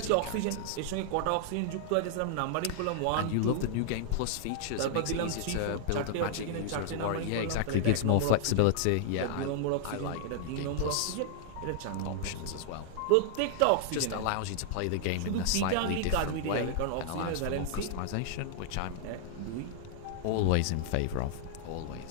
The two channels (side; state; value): both; different; correlation 0.00